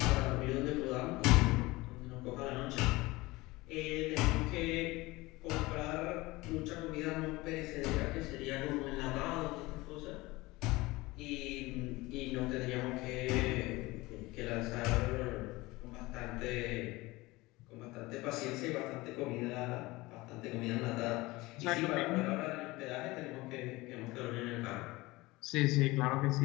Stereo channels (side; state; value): right; quieter; 21.0 dB